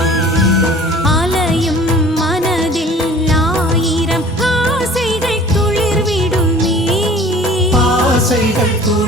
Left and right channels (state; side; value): normal; both; correlation 0.47